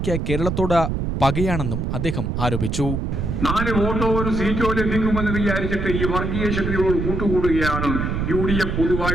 കേരളത്തോട് പകയാണെന്നും അദ്ദേഹം ആരോപിച്ചു. 4 വോട്ടോ ഒരു സീറ്റോ ലഭിക്കുമെന്ന് വിചാരിച്ചിട്ട് ഈ വർഗീയ ശക്തികളോട് കൂട്ടുകൂടുകയാണ് UDF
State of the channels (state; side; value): noise; right; rumble, 2 dB below the sound